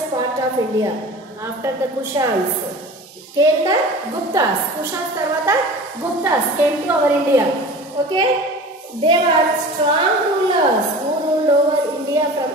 part of India. After the Kushans came the Guptas. Kushans tarvata Guptas came to our India. Okay, they were strong rulers who ruled over India from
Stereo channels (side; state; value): both; normal; correlation 0.37